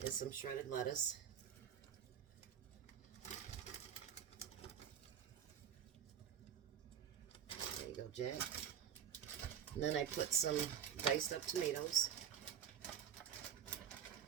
is some shredded lettuce. There you go, Jack. And then I put some diced up tomatoes.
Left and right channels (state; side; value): quieter; left; 9.0 dB